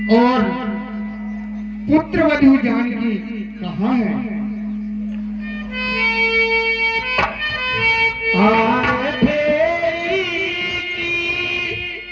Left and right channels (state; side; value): identical; both; correlation 1.00